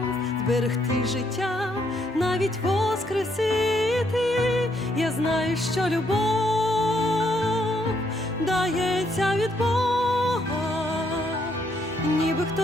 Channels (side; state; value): both; normal; correlation 0.73